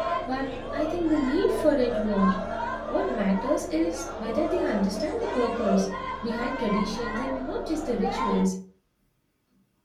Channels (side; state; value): both; identical; correlation 1.00